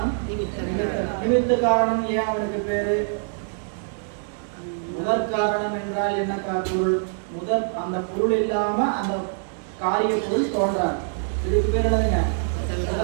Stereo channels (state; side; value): silent; left; digital silence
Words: நிமித்த காரணம். ஏன் அவனுக்கு பேரு? முதல் காரணம் என்றால் என்ன பொருள்? அந்த பொருள் இல்லாம அந்த காரிய பொருள் தோன்றாது. இதுக்கு பேர் என்னதுங்க?